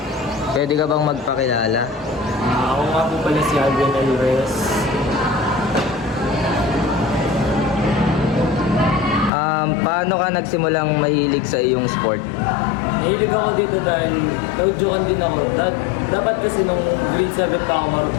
Pwede ka bang magpakilala? Ako nga po pala si Alvin Alvarez. Paano ka nagsimulang mahilig sa iyong sport? Nahilig ako dito dahil naudyukan din ako. Dapat kasi nung grade 7 pa ako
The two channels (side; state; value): right; drops out; at 9.3 s